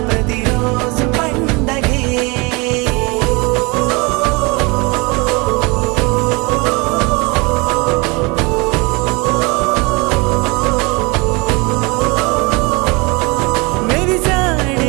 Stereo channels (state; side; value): quieter; left; 27.3 dB